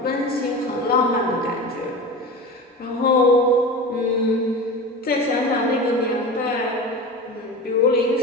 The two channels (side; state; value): both; normal; correlation 0.30